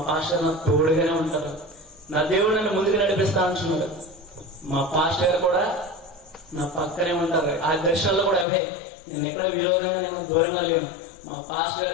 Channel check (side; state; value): right; drops out; at 8.5 s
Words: పాస్టర్ నాకు తోడుగానే ఉంటారు. నా దేవుడు నన్ను ముందుకు నడిపిస్తా అంటున్నాడు. మా పాస్టర్ గారు కూడా నా పక్కనే ఉంటారు. ఆ దర్శనాల్లో కూడా అవే. నేను ఎక్కడ విరోధంగా నేను దూరంగా లేను. మా పాస్టర్